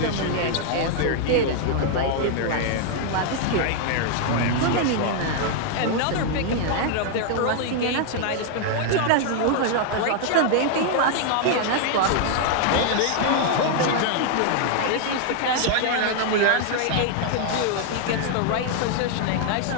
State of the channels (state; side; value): different; both; correlation 0.00